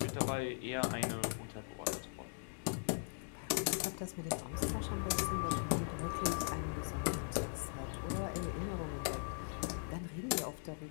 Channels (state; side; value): silent; right; digital silence